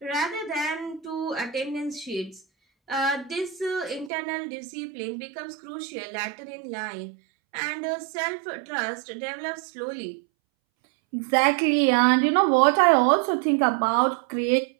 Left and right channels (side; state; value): left; drops out; at 4.1 s